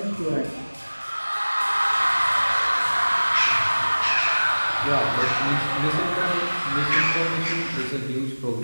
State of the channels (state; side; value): inverted; both; correlation -1.00